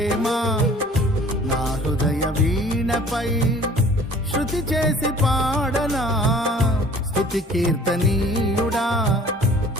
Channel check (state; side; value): normal; both; correlation 0.50